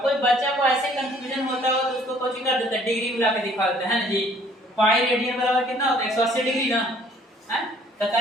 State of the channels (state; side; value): normal; both; correlation 0.59